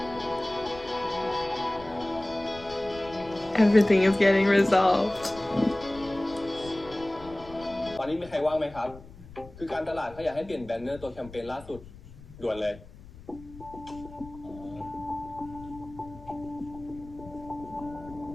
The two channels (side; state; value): left; noise; rumble, 18 dB below the sound